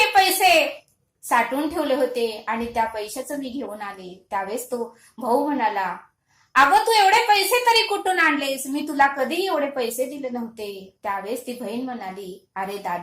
पैसे साठवून ठेवले होते आणि त्या पैशाचं मी घेऊन आले. त्यावेळेस तो भाऊ म्हणाला, अगं तू एवढे पैसे तरी कुठून आणलेस? मी तुला कधीही एवढे पैसे दिले नव्हते. त्यावेळेस ती बहीण म्हणाली, अरे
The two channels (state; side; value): identical; both; correlation 1.00